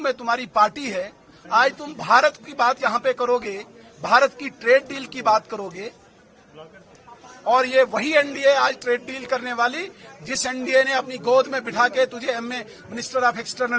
तुम्हारी पार्टी है, आज तुम भारत की बात यहां पे करोगे, भारत की ट्रेड डील की बात करोगे और ये वही एनडीए आज ट्रेड डील करने वाली जिस एनडीए ने अपनी गोद में बिठा के तुझे MA minister of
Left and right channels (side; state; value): both; identical; correlation 1.00